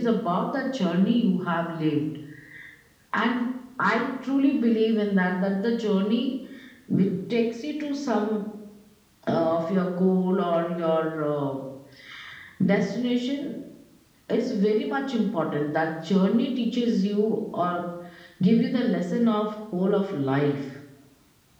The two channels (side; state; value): both; identical; correlation 1.00